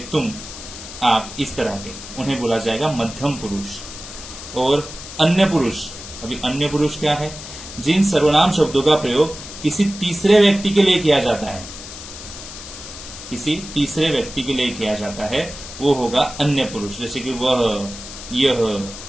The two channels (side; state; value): left; noise; hiss, 12 dB below the sound